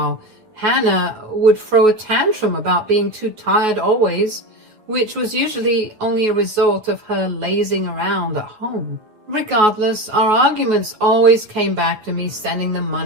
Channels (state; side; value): late; left; 9.4 ms